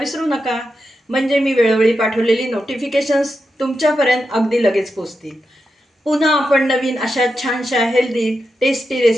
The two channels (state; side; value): normal; both; correlation 0.88